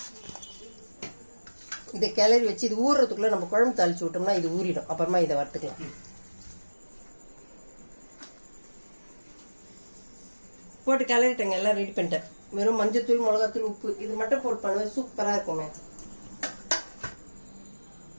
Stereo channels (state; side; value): inverted; both; correlation -1.00